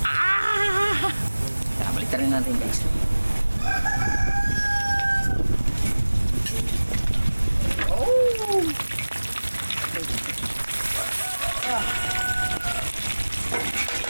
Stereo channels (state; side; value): inverted; both; correlation -1.00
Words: Ah! Tara, balik rin natin guys. Oh!